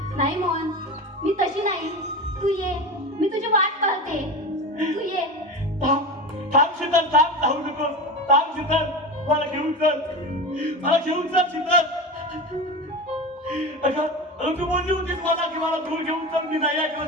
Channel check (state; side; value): normal; both; correlation 0.26